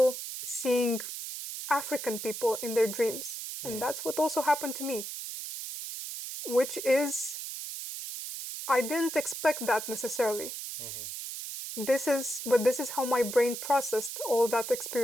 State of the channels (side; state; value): right; noise; hiss, 7 dB below the sound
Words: seeing African people in their dreams. And that's what also happened to me, which is, I didn't expect that necessarily. This is how my brain processed all that